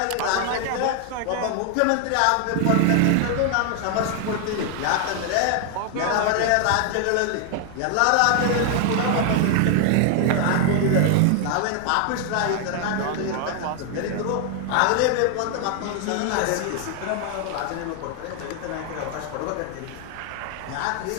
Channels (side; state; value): both; different; correlation 0.00